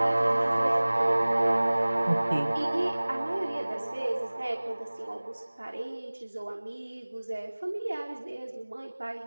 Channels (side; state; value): both; inverted; correlation -1.00